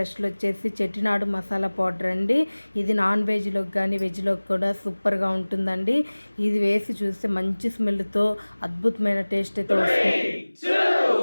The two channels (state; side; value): inverted; both; correlation -1.00